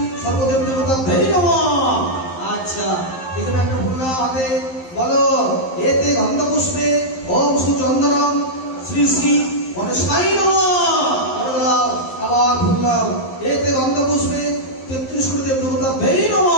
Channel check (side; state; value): right; late; 11 ms